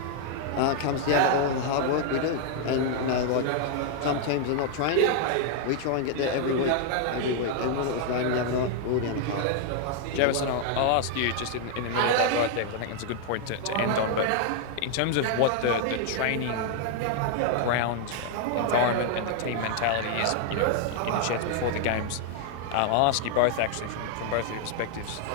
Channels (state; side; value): different; both; correlation 0.00